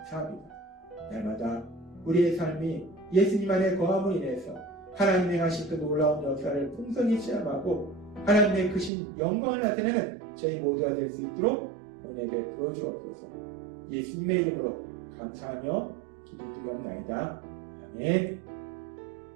날마다 우리의 삶이 예수님 안에 거함으로 인해서 하나님의 하신 그 놀라운 역사를 풍성히 체험하고 하나님의 크신 영광을 나타내는 저희 모두가 될 수 있도록 은혜 베풀어 주옵소서. 예수님의 이름으로 감사하며 기도드리옵나이다. 아멘.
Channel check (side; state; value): left; drops out; at 8.9 s